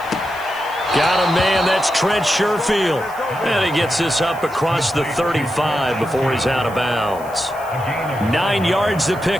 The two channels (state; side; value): noise; left; hiss, 22 dB below the sound